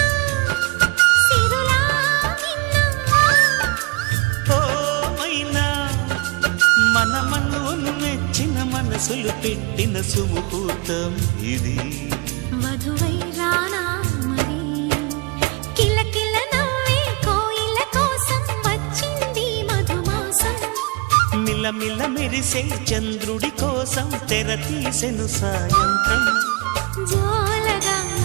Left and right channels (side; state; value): left; quieter; 28.2 dB